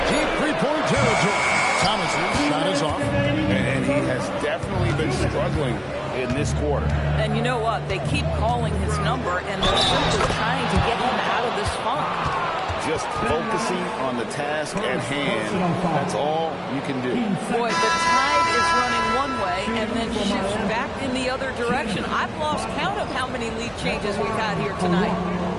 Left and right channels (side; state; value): both; identical; correlation 1.00